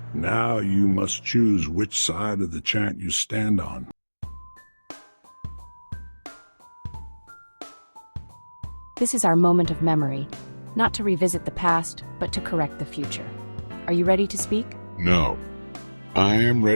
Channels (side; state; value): both; inverted; correlation -1.00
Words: Now you must choose which side of the chant you stand on. This is our moment of memory, not to revisit the past, but to correct the future. Are you ready to speak? No. I am